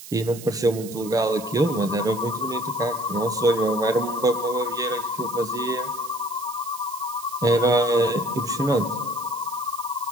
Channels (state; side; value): noise; right; hiss, 15 dB below the sound